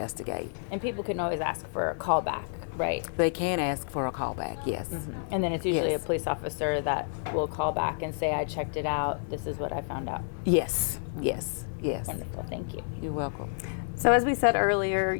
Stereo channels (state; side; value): silent; right; 56 dB below the other